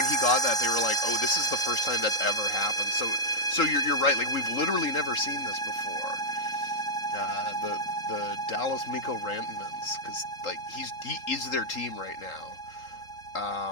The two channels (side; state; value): right; late; 3.8 ms